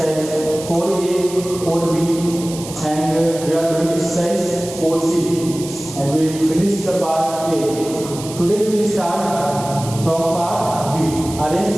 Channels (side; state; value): right; noise; hiss, 13 dB below the sound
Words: 4A, 4B and we are doing exercise 4C and we finished the part A. Today we will start from part B.